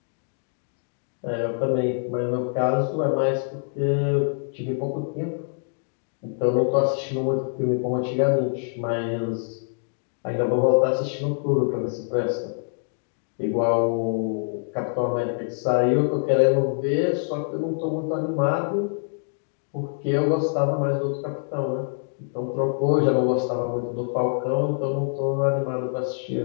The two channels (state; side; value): silent; right; digital silence